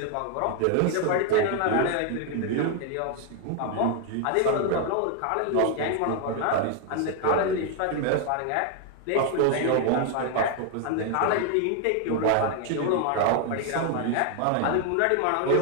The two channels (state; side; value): different; both; correlation 0.01